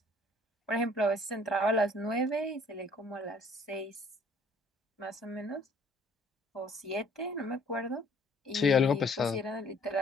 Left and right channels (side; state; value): both; normal; correlation 0.58